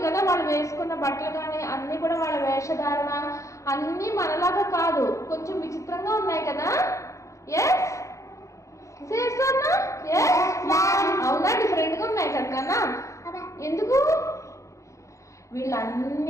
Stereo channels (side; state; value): right; late; 0.15 ms